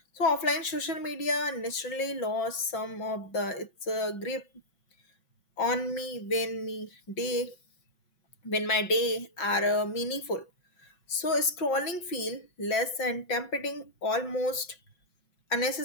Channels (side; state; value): right; late; 5.5 ms